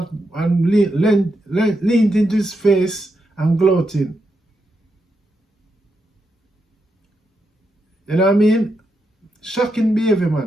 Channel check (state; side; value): normal; both; correlation 0.84